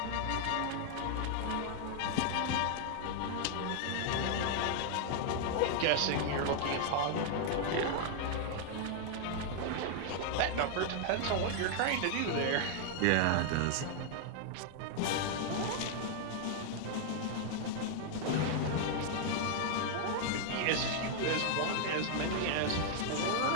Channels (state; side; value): different; both; correlation 0.00